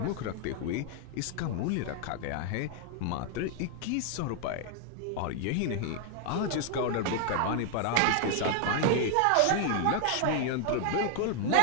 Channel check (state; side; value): different; both; correlation 0.00